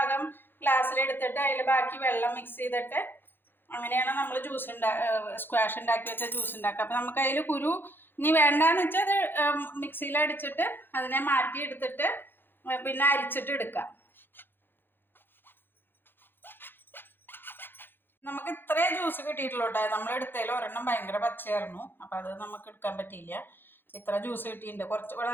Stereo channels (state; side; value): late; right; 0.099 ms